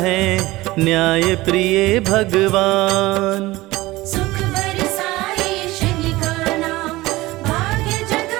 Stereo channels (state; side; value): quieter; left; 19.2 dB